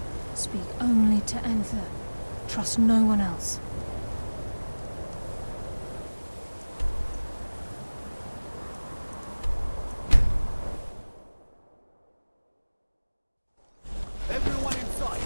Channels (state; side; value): inverted; both; correlation -1.00